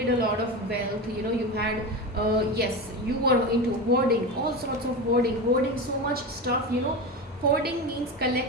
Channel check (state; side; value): normal; both; correlation 0.22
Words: a lot of wealth, you know, you had yes, you were into hoarding, all sorts of hoarding so much stuff, you know. Hoarding means